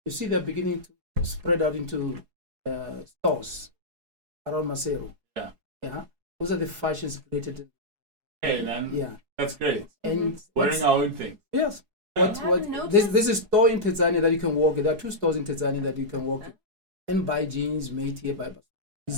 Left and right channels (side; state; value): left; late; 4.7 ms